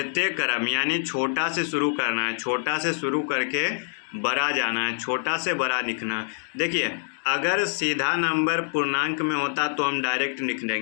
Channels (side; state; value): right; silent; digital silence